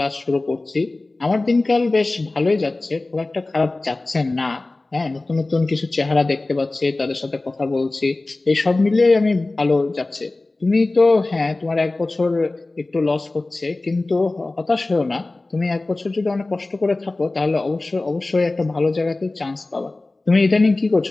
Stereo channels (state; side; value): quieter; right; 3.1 dB